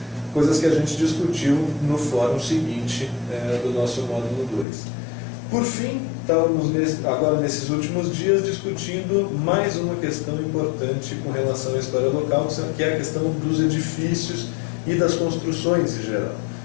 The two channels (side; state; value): right; drops out; at 4.7 s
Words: que a gente discutiu no fórum seguinte do nosso módulo 2. Por fim, estávamos agora nesses últimos dias discutindo mais uma questão importante com relação à história local, que é a questão dos edifícios e das construções em geral.